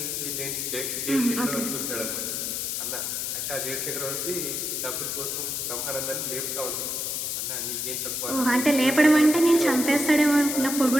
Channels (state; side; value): noise; left; hiss, 2 dB below the sound